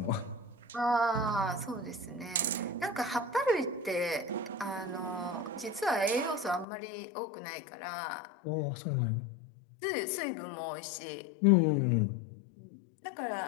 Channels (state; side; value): drops out; right; at 6.7 s